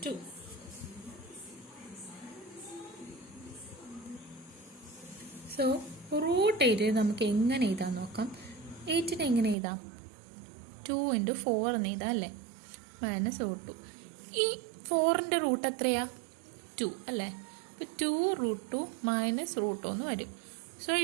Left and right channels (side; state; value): left; drops out; at 9.6 s